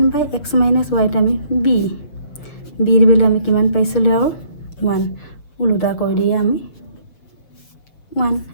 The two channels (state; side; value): late; right; 6.9 ms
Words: - y টো আমি bৰ ভেলু আমি কিমান পাইছিলোঁ, আৰু 1 ওলোটা কৰি দিয়ে আমি 1।